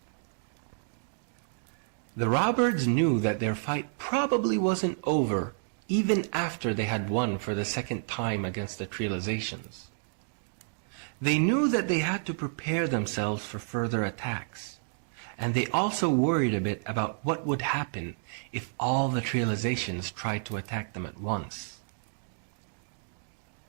The raw birds knew that their fight probably wasn't over even after they had won for the second time against the trializations. They knew that they had to prepare themselves for further attacks, and they also worried a bit about what would happen if all the trializations tried to attack them at once.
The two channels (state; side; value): silent; left; digital silence